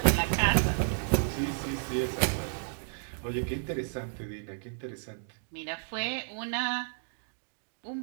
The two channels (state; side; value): silent; left; digital silence